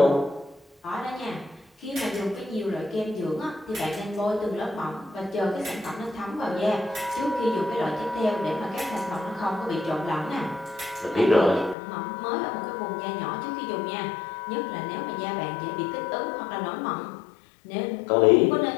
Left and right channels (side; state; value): right; drops out; at 11.8 s